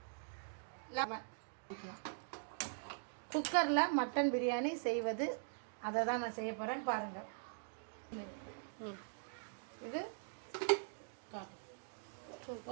லெமன். குக்கரில் மட்டன் பிரியாணி செய்வது அதை தான் நான் செய்ய போகிறேன்னு பாருங்கள். இது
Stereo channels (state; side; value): silent; left; digital silence